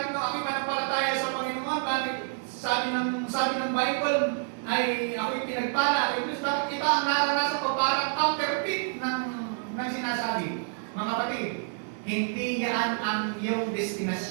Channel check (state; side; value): silent; left; 59 dB below the other